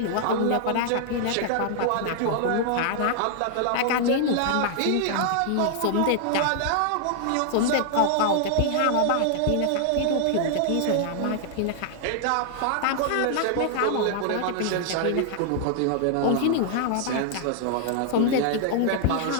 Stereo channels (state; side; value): different; both; correlation 0.00